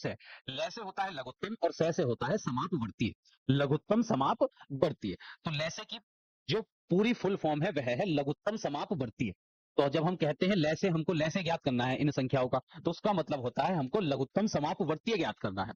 लैसे होता है लघुत्तम और से होता है समापवर्तीय। लघुत्तम समापवर्तीय। तो लैसे की जो पूरी फुल फॉर्म है वह है लघुत्तम समापवर्तीय। तो जब हम कहते हैं लैसे, हमको लैसे ज्ञात करना है इन संख्याओं का, तो उसका मतलब होता है हमको लघुत्तम समापवर्तीय ज्ञात करना है।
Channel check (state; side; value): identical; both; correlation 1.00